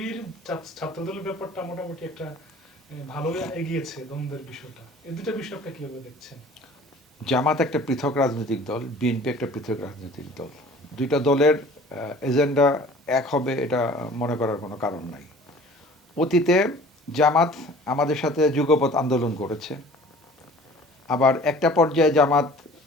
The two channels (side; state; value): both; normal; correlation 0.48